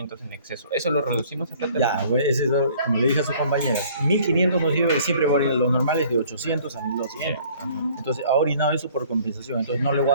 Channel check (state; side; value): inverted; both; correlation -0.56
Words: en exceso. ¿Eso lo reducimos a plata? Ya, güey, ese es, como le dije a sus compañeros, 1500 nos sirve, siempre va a orinar los normales de 800 a 1200. Entonces ha orinado eso por compensación. Entonces no le voy